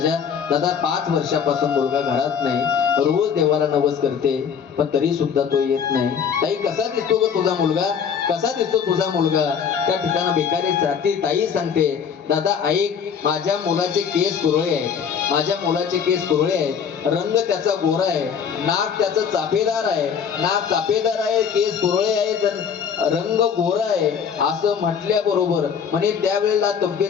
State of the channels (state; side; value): quieter; right; 7.2 dB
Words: दादा 5 वर्षापासून मुलगा घरात नाही, रोज देवाला नवस करते, पण तरी सुद्धा तो येत नाही. ताई कसा दिसतो ग तुझा मुलगा, कसा दिसतो तुझा मुलगा? त्या ठिकाणी भिकारी जाती ताई सांगते, दादा ऐक, माझ्या मुलाचे केस कुरळे आहेत, रंग त्याचा गोरा आहे, नाक त्याचं चापेदार आहे, केस कुरळे आहेत, रंग गोरा आहे. असं म्हटल्याबरोबर म्हणजे त्यावेळेला